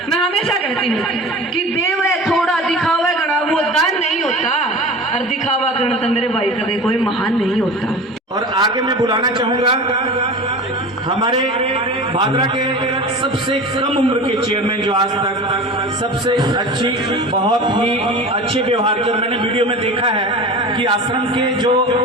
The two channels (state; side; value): normal; both; correlation 0.34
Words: मैं हमेशा कहती हूँ कि देव है थोड़ा दिखावा गणा वो दान नहीं होता, और दिखावा करना तो मेरे भाई कदे कोई महान नहीं होता। और आगे मैं बुलाना चाहूंगा हमारे भादरा के सबसे कम उम्र के चेयरमैन, जो आज तक सबसे अच्छी बहुत ही अच्छे व्यवहार के, और मैंने वीडियो में देखा है कि आश्रम के जो